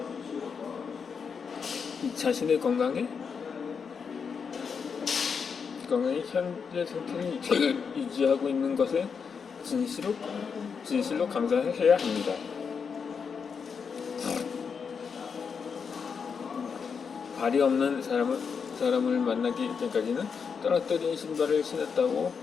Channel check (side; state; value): right; quieter; 6.1 dB